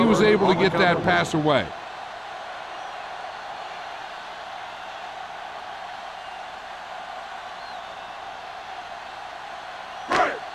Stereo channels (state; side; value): identical; both; correlation 1.00